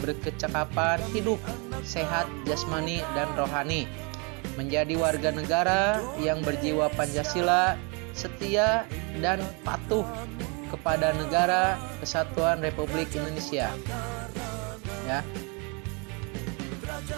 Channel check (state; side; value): quieter; left; 32.3 dB